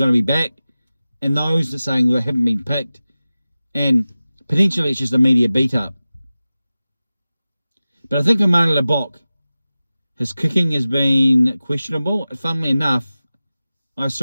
to be back, and those that are saying they haven't been picked, and potentially it's just a media beat up. But I think for Mane Lebok, his kicking has been questionable. Funnily enough, I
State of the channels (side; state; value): both; inverted; correlation -0.96